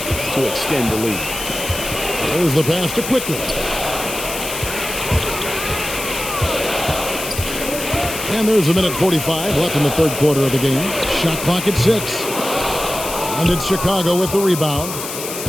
extend the lead. There's the pass to Quickly. And there's a minute 45 left in the third quarter of the game. Shot clock at 6. And it's Chicago with the rebound.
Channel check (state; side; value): noise; left; hiss, 7 dB below the sound